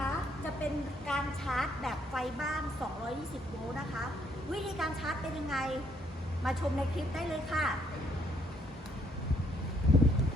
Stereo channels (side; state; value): both; normal; correlation 0.69